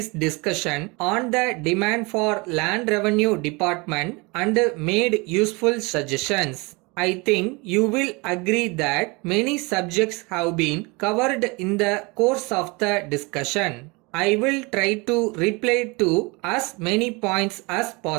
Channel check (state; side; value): quieter; left; 27.0 dB